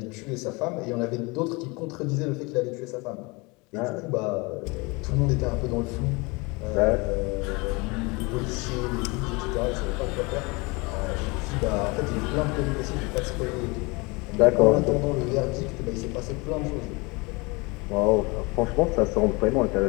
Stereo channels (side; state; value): right; quieter; 26.7 dB